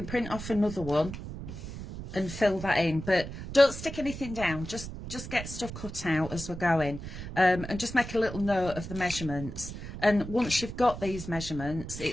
print off another one and fill that in. But don't stick anything down. Just get stuff cut out as we're going. And just make a little note of the measurements. And once you've got these measurements,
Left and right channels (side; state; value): right; noise; rumble, 10 dB below the sound